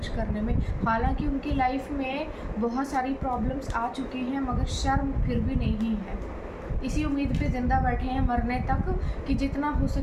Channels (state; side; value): identical; both; correlation 1.00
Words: करने में। हालांकि उनकी लाइफ में बहुत सारी प्रॉब्लम्स आ चुकी हैं, मगर शर्म फिर भी नहीं है। इसी उम्मीद पे ज़िंदा बैठे हैं मरने तक कि जितना हो